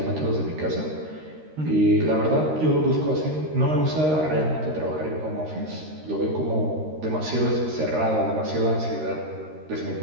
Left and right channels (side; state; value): left; late; 13 ms